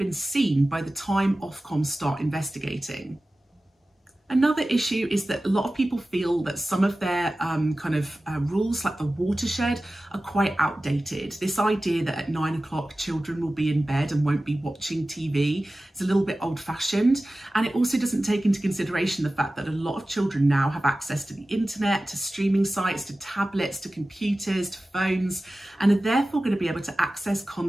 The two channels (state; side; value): normal; both; correlation 0.96